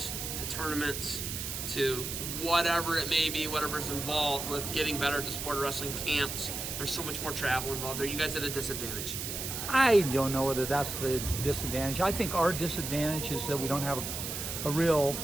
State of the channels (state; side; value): noise; right; hiss, 5 dB below the sound